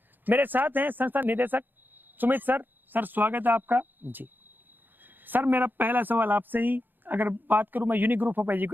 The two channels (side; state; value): left; late; 0.091 ms